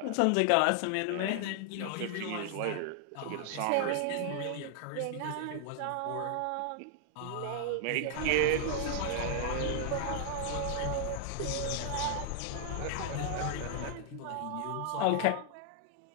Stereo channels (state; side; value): different; both; correlation 0.00